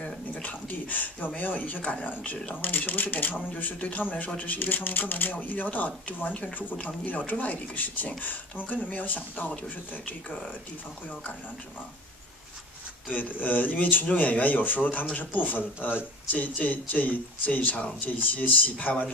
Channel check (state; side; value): normal; both; correlation 0.38